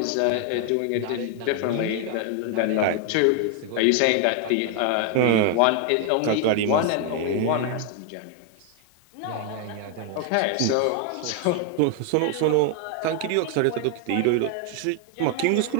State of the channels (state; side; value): different; both; correlation 0.00